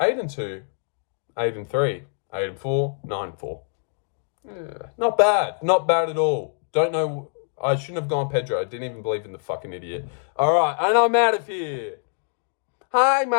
8-3, 8-4, 9-4. Yeah, not bad at all. Don't know. I shouldn't have gone Pedro. I didn't even believe in the fucking idiot. All right, and I'm out of here. Hi,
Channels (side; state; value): right; silent; digital silence